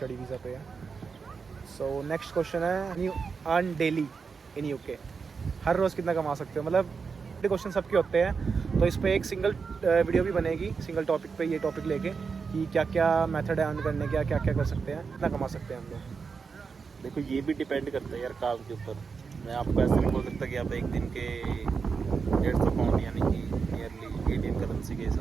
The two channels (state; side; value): quieter; left; 5.3 dB